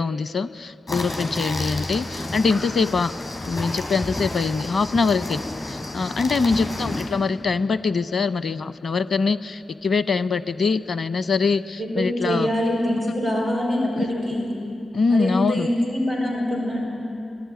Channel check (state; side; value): quieter; right; 3.1 dB